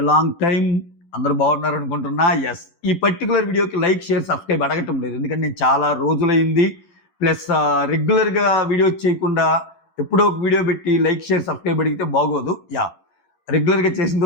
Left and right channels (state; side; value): late; right; 12 ms